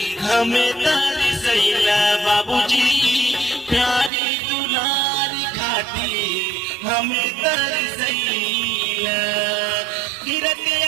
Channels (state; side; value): drops out; left; at 4.1 s